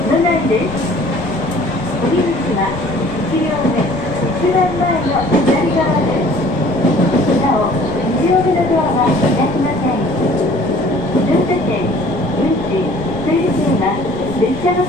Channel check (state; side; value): noise; left; rumble, 16 dB below the sound